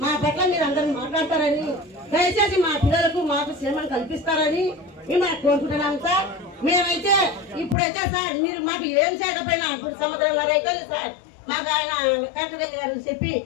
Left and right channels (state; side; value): drops out; right; at 7.8 s